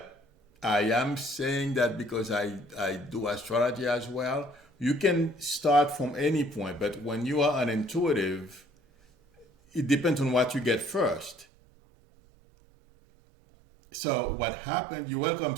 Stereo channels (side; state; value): left; drops out; at 11.5 s